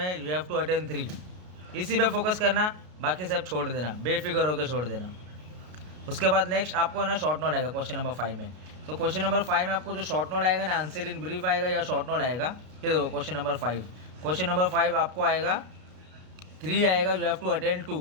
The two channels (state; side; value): late; left; 33 ms